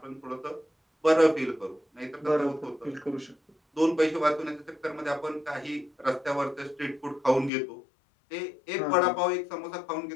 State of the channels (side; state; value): right; drops out; at 7.5 s